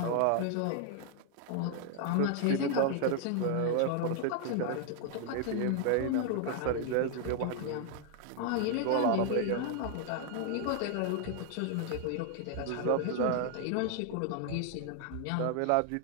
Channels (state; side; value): different; both; correlation 0.00